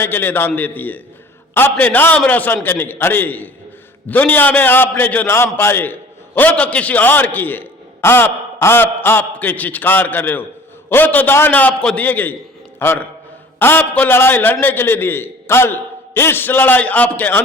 के लिए दान देती है, अपने नाम रोशन करने के। अरे दुनिया में आपने जो नाम पाए वो तो किसी और की है, आपके चित्कार कर रहे हो, वो तो दान आपको दिए गई और आपको लड़ाई लड़ने के लिए दिए। कल इस लड़ाई आपके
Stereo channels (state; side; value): normal; both; correlation 0.47